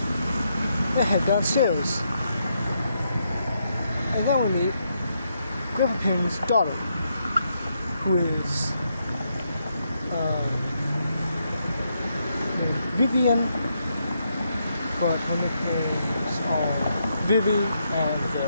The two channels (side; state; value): both; inverted; correlation -0.79